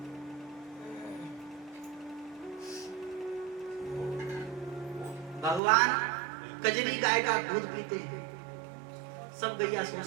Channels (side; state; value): left; drops out; at 5.6 s